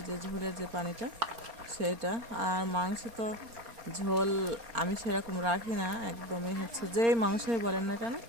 যে ঝোলের যে পানিটা সেটা। আর মাংস তো ঝোল আমি সেরকম রাখি না, একদমই যেই মাংসই বলেন না কেন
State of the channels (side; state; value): left; late; 4.3 ms